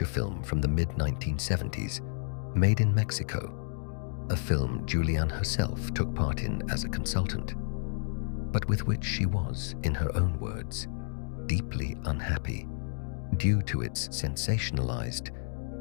film from the mid-1970s, Made in Mexico, a film Juliane herself took part in as a consultant, but with which she was, in her own words, deeply unhappy due to its sensationalized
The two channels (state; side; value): silent; right; digital silence